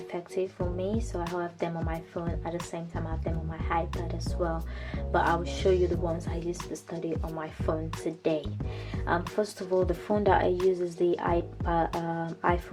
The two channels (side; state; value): both; identical; correlation 1.00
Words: for me, so I have them on my phone. At the same time I have them on my iPad as well, but I will show you the ones I use to study on my phone today. First of all, the phone that I use is the